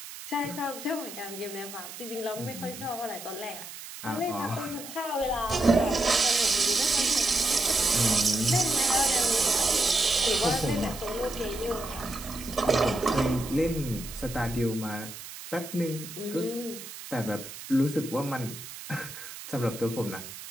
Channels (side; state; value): right; noise; hiss, 12 dB below the sound